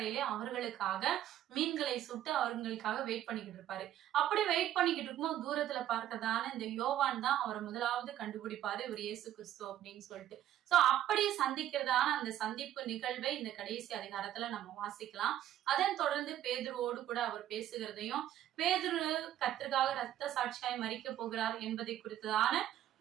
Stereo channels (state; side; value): quieter; left; 12.1 dB